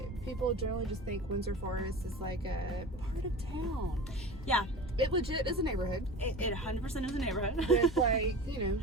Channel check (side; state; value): both; normal; correlation 0.34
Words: people generally just think Windsor Forest is like a part of town. Yeah, It legit is a neighborhood it 100% is a neighborhood. with like,